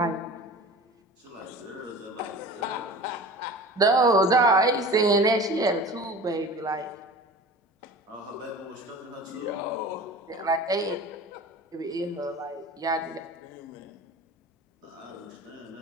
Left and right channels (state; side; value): normal; both; correlation 0.38